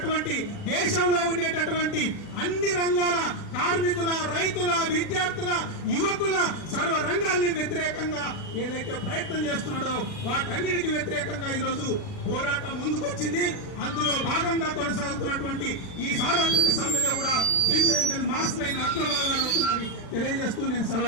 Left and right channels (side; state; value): right; late; 40 ms